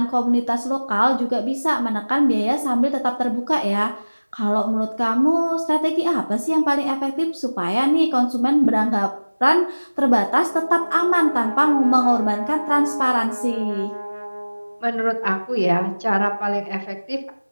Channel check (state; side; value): inverted; both; correlation -1.00